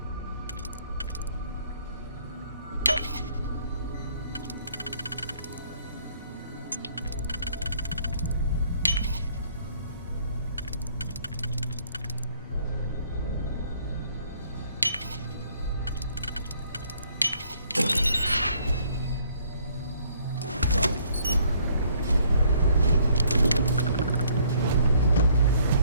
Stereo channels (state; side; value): inverted; both; correlation -0.63